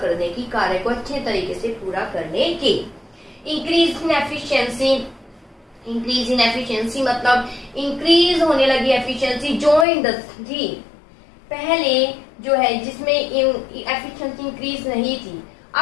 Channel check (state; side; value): drops out; right; at 9.9 s